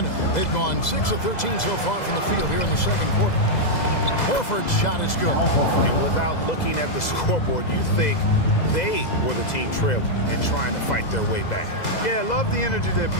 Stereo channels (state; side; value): late; right; 2.0 ms